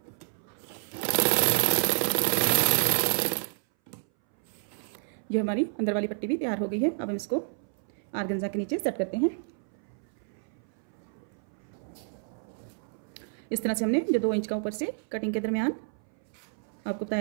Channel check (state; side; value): silent; left; 58 dB below the other